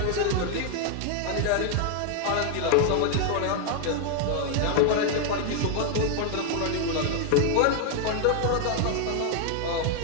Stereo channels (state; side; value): different; both; correlation 0.00